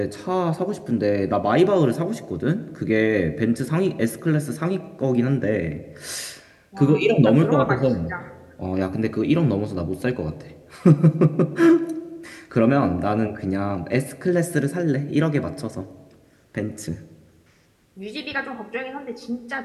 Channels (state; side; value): identical; both; correlation 1.00